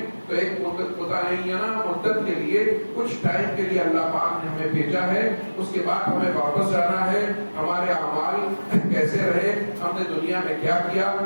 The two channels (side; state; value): both; inverted; correlation -1.00